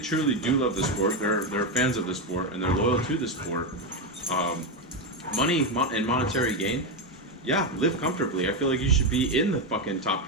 do love the sport, they're fans of the sport, and they're loyal to the sport, money and monetary gain, yeah, live comfortably. I feel like you should be in the fucking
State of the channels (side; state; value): both; normal; correlation 0.09